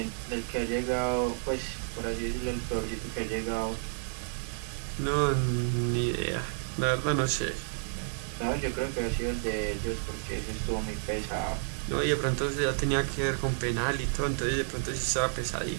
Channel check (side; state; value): left; silent; 57 dB below the other